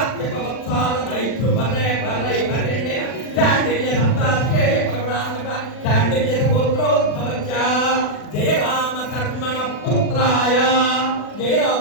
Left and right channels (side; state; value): right; late; 40 ms